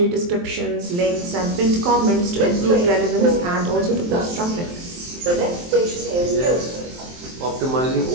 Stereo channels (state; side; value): late; left; 23 ms